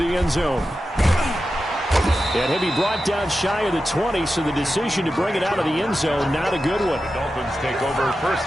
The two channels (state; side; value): normal; both; correlation 0.91